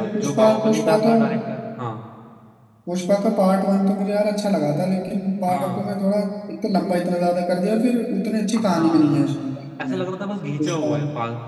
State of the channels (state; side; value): identical; both; correlation 1.00